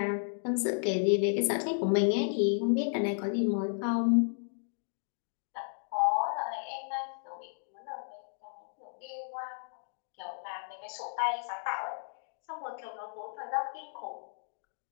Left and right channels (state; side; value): silent; right; digital silence